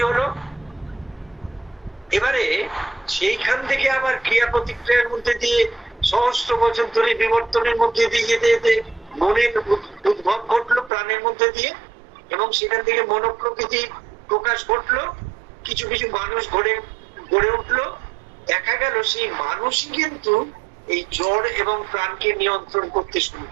হলো। এবারে সেইখান থেকে আবার ক্রিয়া প্রতিক্রিয়ার মধ্যে দিয়ে সহস্র বছর ধরে বিবর্তনের মধ্যে দিয়ে যেতে যেতে মনের উদ্ভব ঘটলো প্রাণের মধ্যে দিয়ে, এবং সেখান থেকে মনোপ্রকৃতি প্রকাশ ঘটলো। কিছু কিছু মানুষ গড়ে উঠলো। দেখা গেল সেই মানুষই কিন্তু এই জ্বর এবং প্রাণকে নিয়ন্ত্রণ করতে শুরু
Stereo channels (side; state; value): left; drops out; at 10.9 s